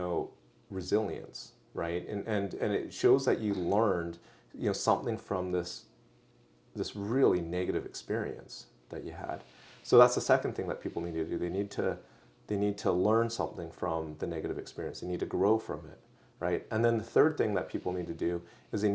resilience, right? And it shows that you learned, something from this really negative experience that you had. So that's the second thing that people need to do. They need to learn something from the negative experience. They need to grow from it, right? And then the third thing that people need to do is they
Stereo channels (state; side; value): identical; both; correlation 1.00